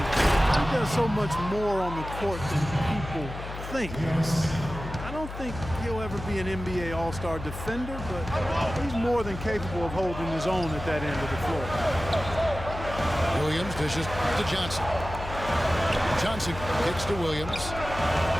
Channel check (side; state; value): left; noise; hum, 9 dB below the sound